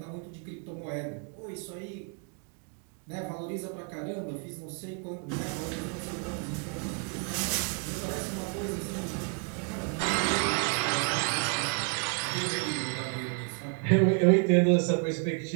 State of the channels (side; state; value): left; quieter; 39.4 dB